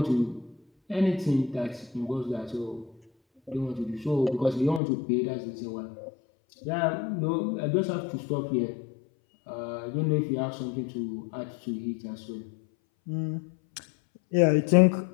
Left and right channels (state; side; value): drops out; right; at 4.8 s